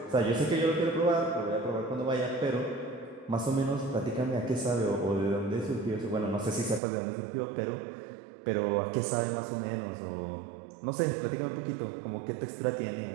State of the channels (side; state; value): left; drops out; at 6.8 s